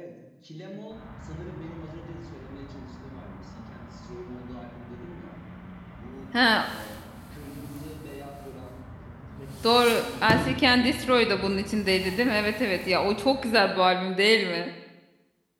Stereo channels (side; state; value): both; identical; correlation 1.00